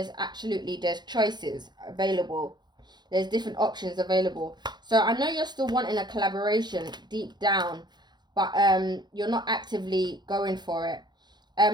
choices available. There's different options available. So I know you're still wanting a collaboration deep down, but you're not actively going for it.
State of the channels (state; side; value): late; left; 0.21 ms